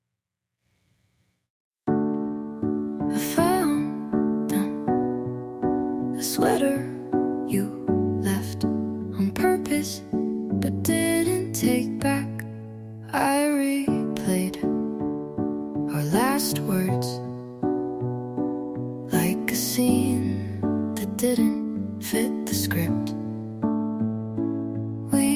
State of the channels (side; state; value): both; identical; correlation 1.00